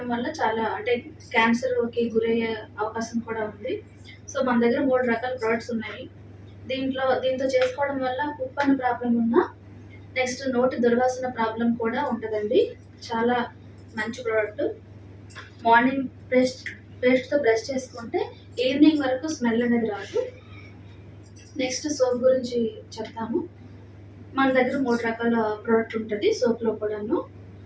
వల్ల చాలా అంటే క్యాన్సర్కి గురయ్యే అవకాశం కూడా ఉంది. సో మన దగ్గర 3 రకాల ప్రొడక్ట్స్ ఉన్నాయి. దీంతో చేసుకోవడం వల్ల కుప్పని ప్రాబ్లం ఉన్నా, నెక్స్ట్ నోటి దుర్వాసన ప్రాబ్లం కూడా ఉంటుందండి. చాలా మంచి ప్రోడక్ట్. మార్నింగ్ పేస్ట్తో బ్రష్ చేసుకుంటే ఈవినింగ్ వరకు స్మెల్ అనేది రాదు. నెక్స్ట్ సోప్ గురించి చెప్తాము. మన దగ్గర 3 రకాల ప్రోడక్ట్ ఉంటుంది సోప్లో కూడాను.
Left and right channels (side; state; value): both; identical; correlation 1.00